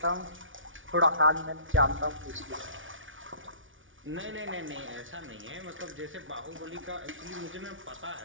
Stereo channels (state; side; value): late; left; 0.57 ms